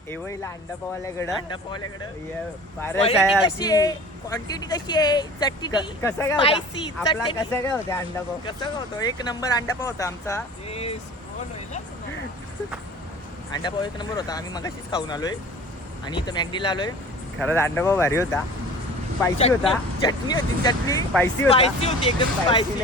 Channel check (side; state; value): both; normal; correlation 0.42